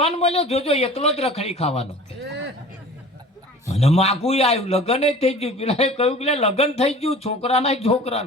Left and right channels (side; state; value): both; normal; correlation 0.43